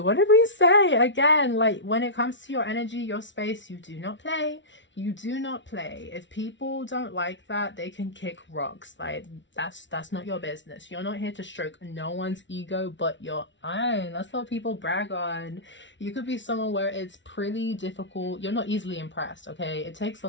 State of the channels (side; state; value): right; late; 0.54 ms